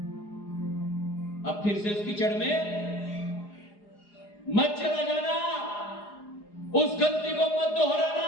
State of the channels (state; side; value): late; right; 4.9 ms